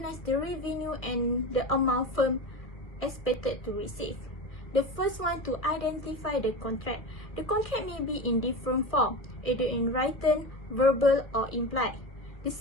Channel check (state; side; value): late; right; 1.7 ms